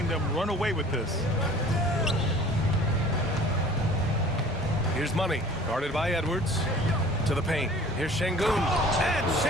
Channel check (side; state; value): both; normal; correlation 0.48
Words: them run away with this. Here's Money, guarded by Edwards. To the paint. Here's Şengün. And